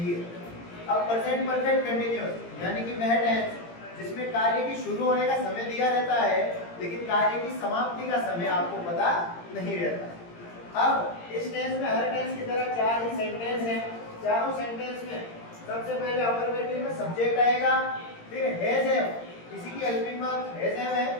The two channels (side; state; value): right; late; 17 ms